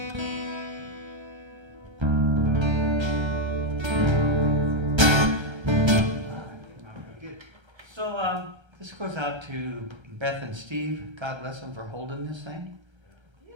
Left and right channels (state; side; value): late; left; 1.3 ms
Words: Good. So this goes out to Beth and Steve. God bless them for holding this thing.